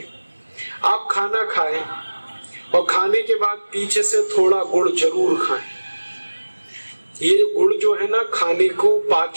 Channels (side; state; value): both; inverted; correlation -1.00